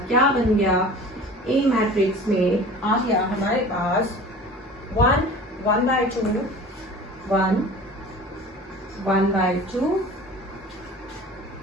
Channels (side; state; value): both; normal; correlation 0.41